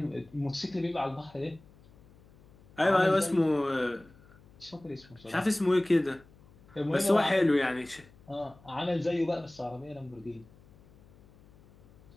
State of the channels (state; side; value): noise; left; hum, 26 dB below the sound